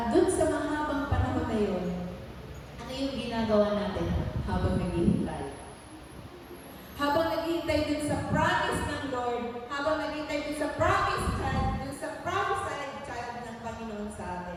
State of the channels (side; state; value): both; identical; correlation 1.00